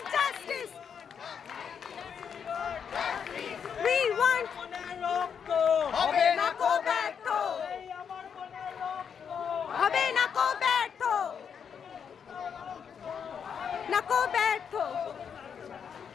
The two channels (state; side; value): quieter; right; 7.2 dB